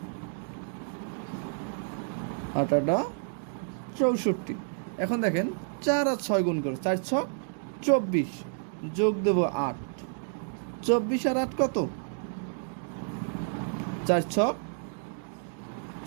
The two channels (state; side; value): silent; left; digital silence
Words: 8 আটা 64। এখন দেখেন 4 আর 6 গুণ করো, 4 6 24, যোগ দেবো 8। 24 আর 8 কত, 4 6